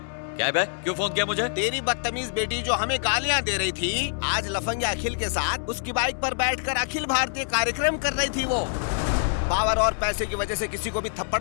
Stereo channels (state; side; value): silent; right; 61 dB below the other